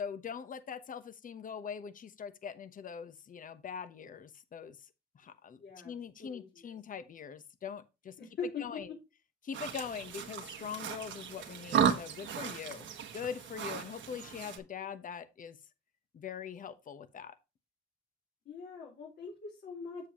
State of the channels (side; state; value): both; normal; correlation 0.14